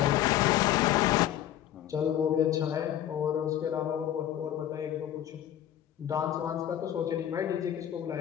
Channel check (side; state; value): right; quieter; 11.5 dB